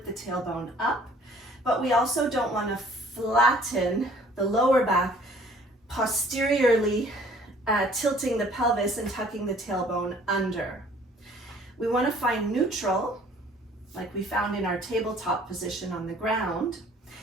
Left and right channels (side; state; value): both; normal; correlation 0.55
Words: the tailbone up, but we also don't want to flatten the lower back posteriorly, tilting the pelvis and tucking the tailbone under. We want to find neutral, like we found in our tabletop position on the ground.